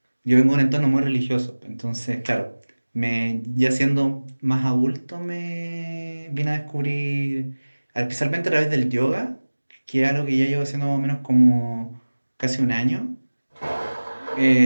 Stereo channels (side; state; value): both; inverted; correlation -1.00